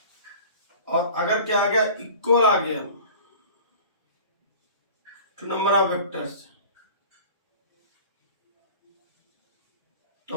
और अगर क्या आ गया, इक्वल आ गया टू नंबर ऑफ वेक्टर्स, तो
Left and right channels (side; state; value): both; inverted; correlation -0.41